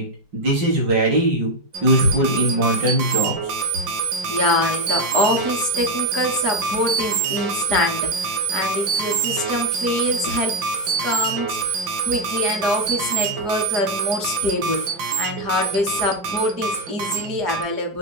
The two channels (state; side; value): late; left; 4.9 ms